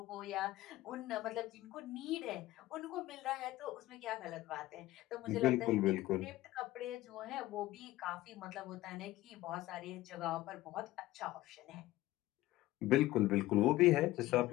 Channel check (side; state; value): right; quieter; 16.6 dB